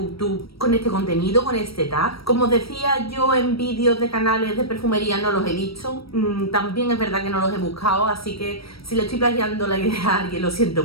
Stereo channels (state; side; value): late; right; 0.75 ms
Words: con este contenido, con este tag. Como os decía, yo en vídeos de canales de perfumería no los he visto. También es verdad que no los he buscado, así que si le estoy plagiando la idea a alguien lo siento